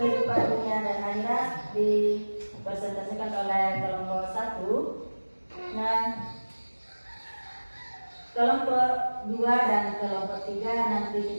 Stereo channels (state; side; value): inverted; both; correlation -1.00